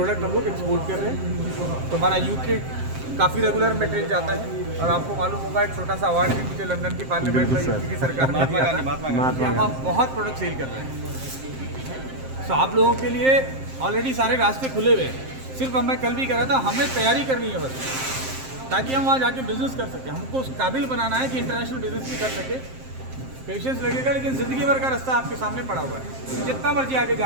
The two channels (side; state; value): left; late; 7.6 ms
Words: हम लोग एक्सपोर्ट कर रहे हैं। तो हमारा यूके काफ़ी रेगुलर मटेरियल जाता है और आपको मालूम होगा एक छोटा सा अवार्ड भी मुझे लंदन की पार्लियामेंट में यूके की सरकार ने दिया था। हम आप बहुत प्रोडक्ट सेल कर रहे हैं। तो आप लोगों के लिए ऑलरेडी सारे रास्ते खुले हुए हैं। सिर्फ मैं कल भी कह रहा था, हमें तैयारी करनी है बस, ताकि हम वहाँ जाके बिजनेस कर सकें। हमको उस काबिल बनाना है कि इंटरनेशनल बिजनेस भी कर सके। पेशेंस लगेगा, लेकिन ज़िंदगी भर का रास्ता आपके सामने पड़ा हुआ है। जितना मर्जी आगे